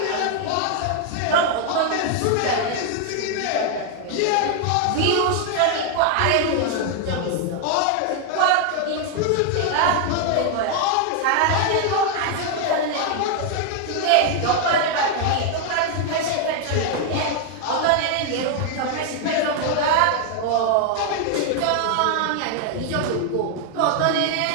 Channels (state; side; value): different; both; correlation 0.00